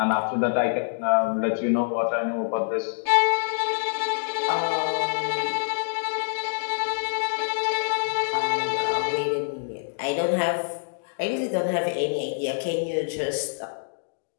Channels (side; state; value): right; silent; digital silence